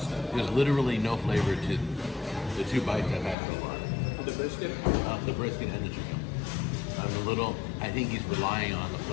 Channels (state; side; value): drops out; right; at 3.4 s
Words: There's literally no flavor to the 2 bites I've had so far. The brisket? The brisket and the chicken. I think he's relying on the